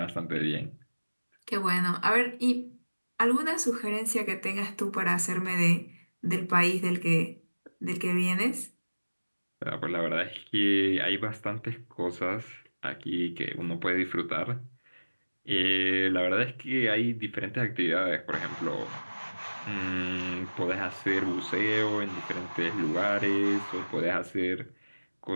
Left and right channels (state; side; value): inverted; both; correlation -1.00